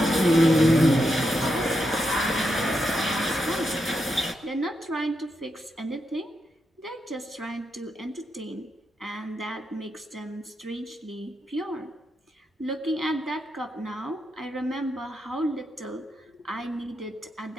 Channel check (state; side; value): normal; both; correlation 0.84